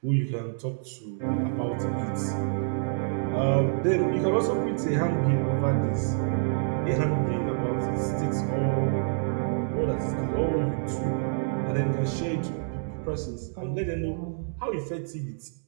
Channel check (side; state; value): left; silent; digital silence